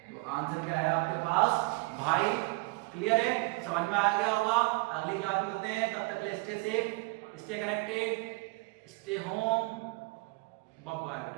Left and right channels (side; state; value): left; quieter; 26.7 dB